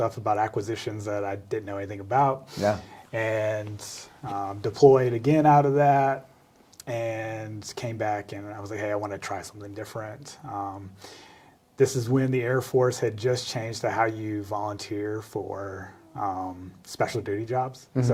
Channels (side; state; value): both; identical; correlation 1.00